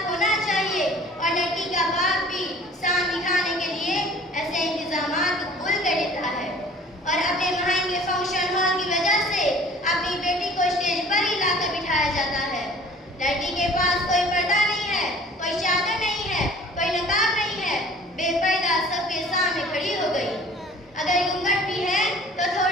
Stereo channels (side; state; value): both; normal; correlation 0.48